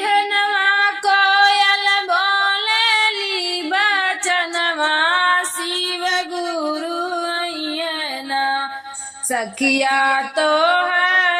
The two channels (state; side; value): identical; both; correlation 1.00